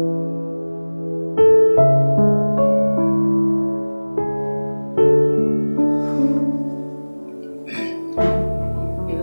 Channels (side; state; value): both; inverted; correlation -1.00